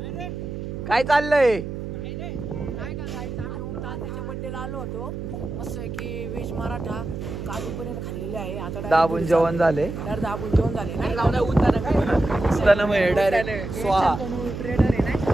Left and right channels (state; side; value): noise; right; hum, 7 dB below the sound